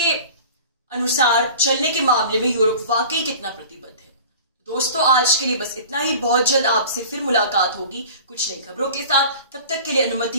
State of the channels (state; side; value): inverted; both; correlation -0.41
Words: अनुसार चलने के मामले में यूरोप वाकई कितना प्रतिबद्ध है। दोस्तों, आज के लिए बस इतना ही। बहुत जल्द आपसे फिर मुलाकात होगी कुछ नई खबरों के साथ। तब तक के लिए